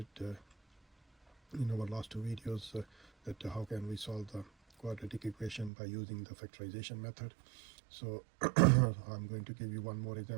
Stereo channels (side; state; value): left; drops out; at 5.7 s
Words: in our last two videos that how can we solve the quadratic equation by using the factorization method. So I'm going to give you one more